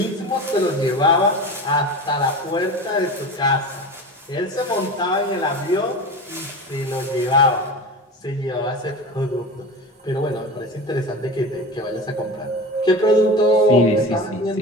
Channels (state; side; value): normal; both; correlation 0.30